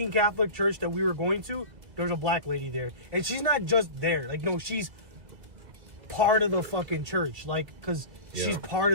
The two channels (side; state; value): left; late; 2.3 ms